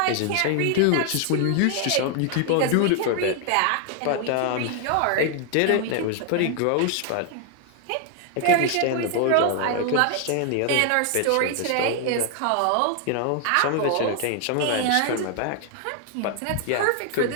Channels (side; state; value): both; different; correlation 0.00